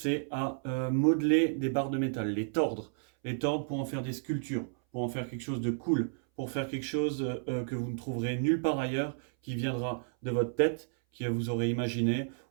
à modeler des barres de métal, les tordre. Les tordre pour en faire des sculptures, pour en faire quelque chose de cool, pour faire quelque chose que vous ne trouverez nulle part ailleurs, qui viendra de votre tête, que vous aurez imaginé,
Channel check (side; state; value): left; silent; 57 dB below the other